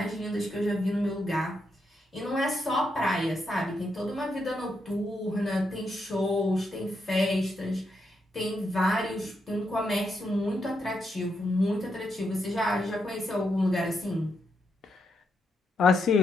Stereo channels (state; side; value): normal; both; correlation 0.81